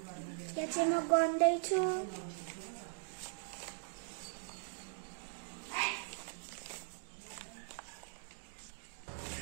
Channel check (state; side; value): silent; left; digital silence